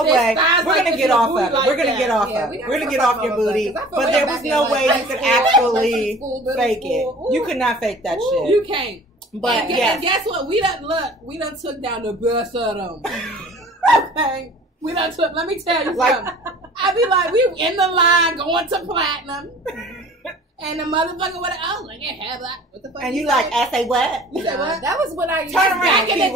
this, way. thighs We're like going to get off of it. We're going to get off of it. We're going to get off your booty. But there was no way you could actually fake it. You could not fake that shit. You can't. But and guess what? We done took down the best of them. Okay. We done took, let me tell you something. I be like, we in the line going to platinum. And the motherfucker would have, like, yeah, what the fuck? And you like, I say what? You said what? That was when I used back in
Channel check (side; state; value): both; normal; correlation 0.46